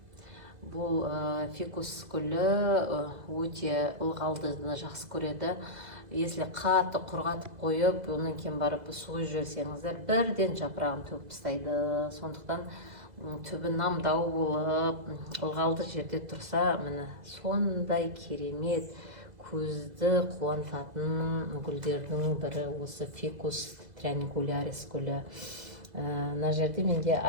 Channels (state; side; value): late; left; 2.0 ms